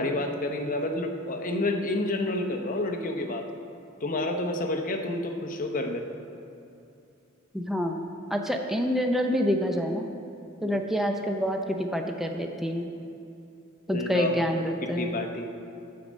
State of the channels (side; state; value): both; normal; correlation 0.53